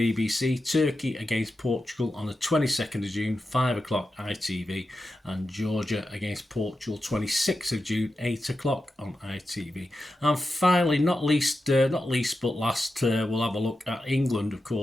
Turkey against Portugal on the 22nd of June, 5 o'clock ITV. And Georgia against Portugal, 26th of June, 8 o'clock on ITV. And finally, not least but last, we'll have a look at England, of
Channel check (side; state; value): both; normal; correlation 0.90